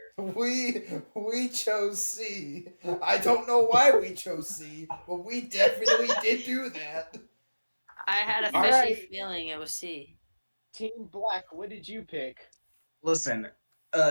answer? We chose C. I don't know why we chose C, but we definitely did do that. I had a All fishy right. feeling it was C. Team Black, what did you pick? Listen,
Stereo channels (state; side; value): inverted; both; correlation -1.00